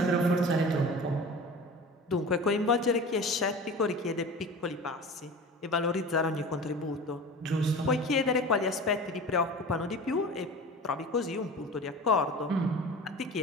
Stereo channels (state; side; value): normal; both; correlation 0.36